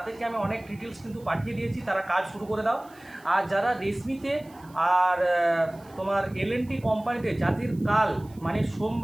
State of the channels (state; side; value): noise; right; hiss, 27 dB below the sound